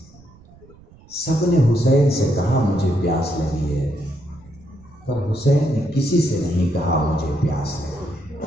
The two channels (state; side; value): noise; right; rumble, 25 dB below the sound